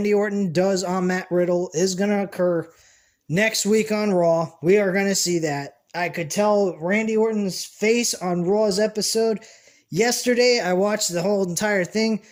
Orton does on Matt Riddle is going to occur next week on Raw. We are going to see that. I could tell Randy Orton's face on Raw's episode. Yesterday, I watched the whole entire thing.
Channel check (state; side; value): identical; both; correlation 1.00